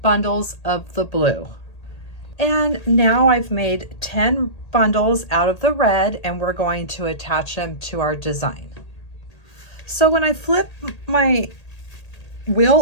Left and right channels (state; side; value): late; right; 1.8 ms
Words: bundles of the blue. And now I've made 10 bundles out of the red, and we're going to attach them to our design. So when I flip my